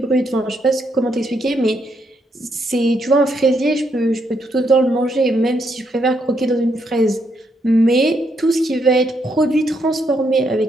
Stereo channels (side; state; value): both; normal; correlation 0.76